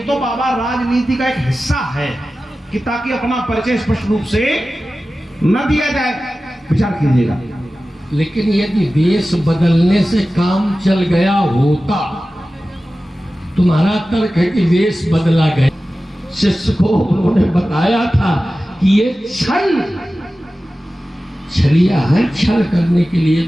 बाबा राजनीति का एक हिस्सा है कि ताकि अपना परिचय स्पष्ट रूप से न दिया जाए। विचार कीजिएगा। लेकिन यदि वेश बदलने से काम चल गया होता, तुम्हारा तर्क है कि वेश बदला गया, शिष्य को उन्होंने बताया था कि ये छलिया है, छल करने के लिए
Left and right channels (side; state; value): both; normal; correlation 0.95